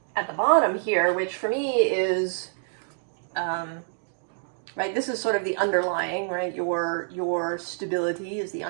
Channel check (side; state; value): left; silent; digital silence